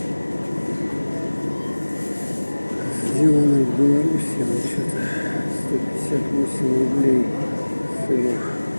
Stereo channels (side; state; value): both; inverted; correlation -1.00